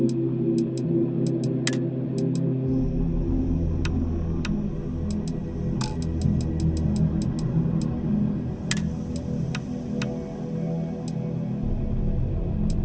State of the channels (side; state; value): both; identical; correlation 1.00